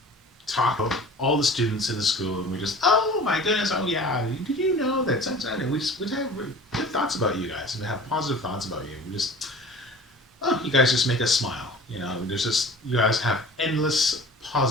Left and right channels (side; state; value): both; normal; correlation 0.42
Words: talk about all the students in the school, and we just, oh my goodness, oh yeah, did you know that sometimes, and we have good thoughts about you guys, and we have positive thoughts about you. We just, you guys just make us smile. There's just, you guys have endless